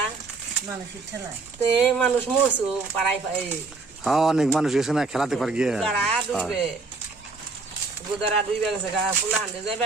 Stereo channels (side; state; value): left; quieter; 3.9 dB